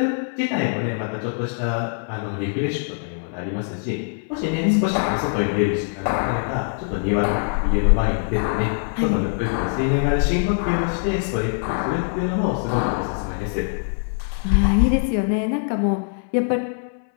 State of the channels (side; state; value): right; silent; 64 dB below the other